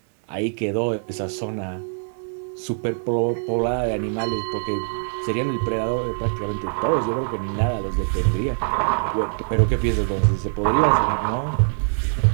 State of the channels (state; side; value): silent; left; digital silence